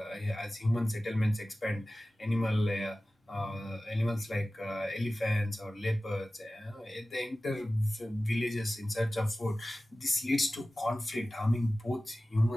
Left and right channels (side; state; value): both; normal; correlation 0.96